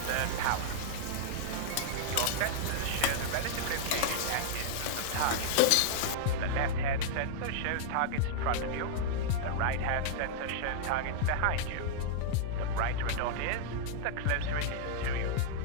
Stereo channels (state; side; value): different; both; correlation -0.02